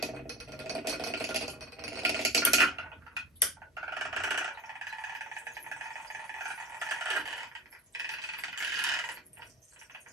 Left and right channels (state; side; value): normal; both; correlation 0.31